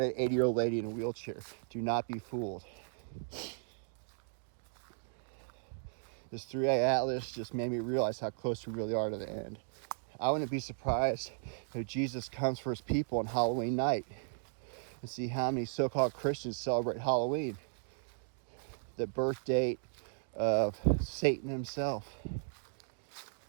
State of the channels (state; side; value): silent; left; digital silence